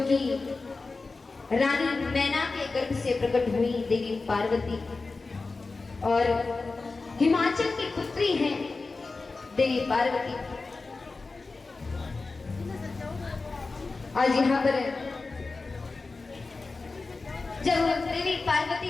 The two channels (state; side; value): quieter; right; 3.8 dB